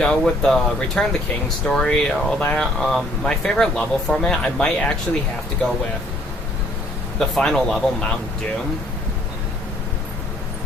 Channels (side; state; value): both; normal; correlation 0.61